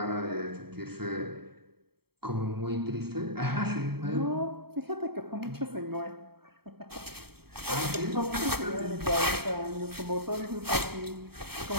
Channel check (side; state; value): left; late; 0.96 ms